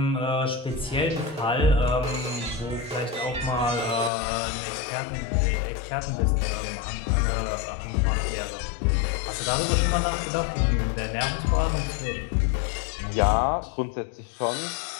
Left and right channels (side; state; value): right; drops out; at 4.1 s